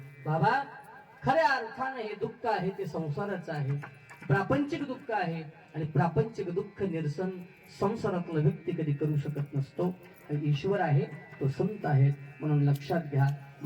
बाबा खऱ्या अर्थाने हे दुःख आहे ते संसाराचं आहे प्रापंचिक दुःख आहे आणि प्रापंचिक दुःख निरसन संसारातला व्यक्ती कधी करू शकत नसतो ईश्वर आहे तो संत आहे म्हणून लक्षात घ्या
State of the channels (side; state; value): both; identical; correlation 1.00